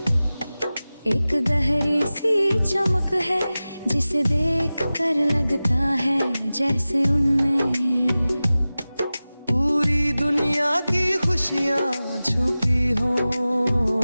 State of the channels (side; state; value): both; inverted; correlation -0.96